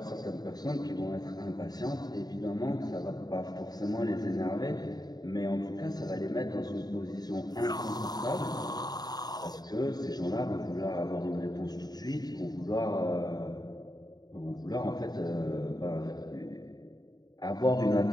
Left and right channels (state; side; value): late; right; 0.19 ms